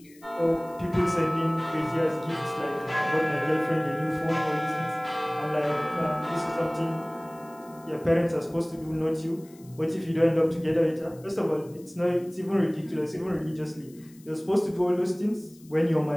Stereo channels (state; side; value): noise; left; hiss, 26 dB below the sound